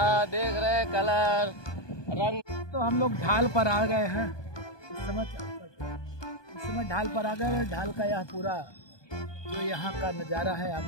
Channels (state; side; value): late; right; 1.2 ms